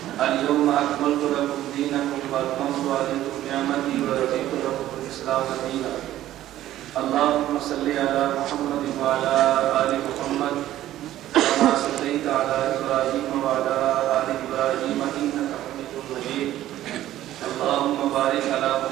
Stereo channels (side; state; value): left; quieter; 13.6 dB